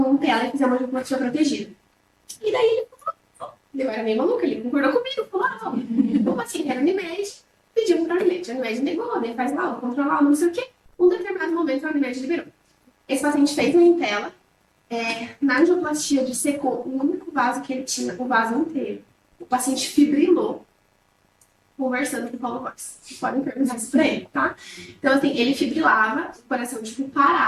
Impella e fizer uma angioplastia protegida. E daí ele falou, eu era meio maluca, ele concordou comigo, falou, como assim, era Unimed, pediu para a Unimed. A Unimed negou, daí faz lá, controlar, não sei o quê. Um determinado momento a Unimed liberou. Esse paciente fez um Impella, na angioplastia dissecou o único vaso que ele tinha, o vaso inteiro. O paciente fibrilou, conversando com o Paulo Góes. Vocês podem perguntar isso pra ele, tá? Então, assim, ele fibrilava, o coração, tipo,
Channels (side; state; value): both; identical; correlation 1.00